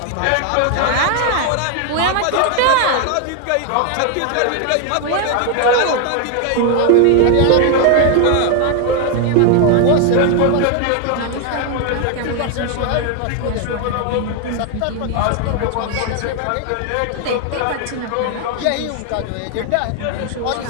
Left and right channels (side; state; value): both; different; correlation 0.00